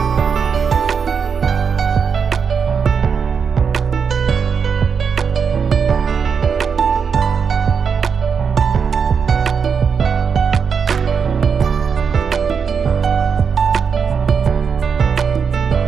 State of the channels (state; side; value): quieter; left; 6.3 dB